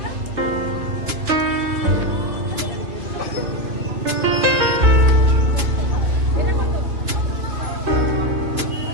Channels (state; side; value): late; left; 2.9 ms